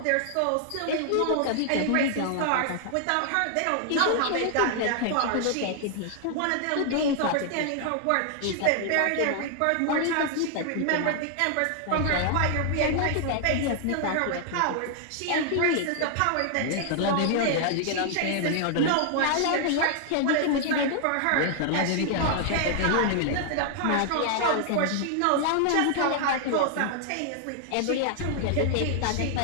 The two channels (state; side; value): different; both; correlation 0.00